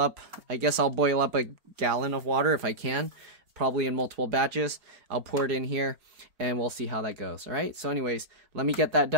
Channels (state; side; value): late; left; 4.4 ms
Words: I guess I'll boil up a gallon of water if I can, probably in multiple batches. I'll pour it in here and we'll see how that goes. All right. So anyways, let me get that